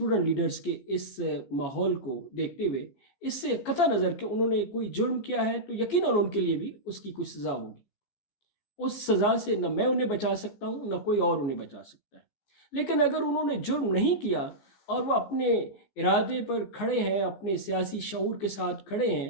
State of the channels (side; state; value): right; late; 14 ms